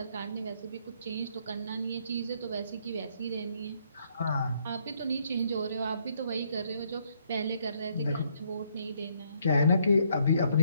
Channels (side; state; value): both; inverted; correlation -0.70